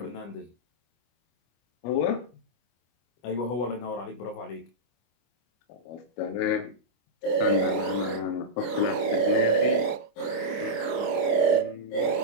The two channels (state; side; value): late; right; 25 ms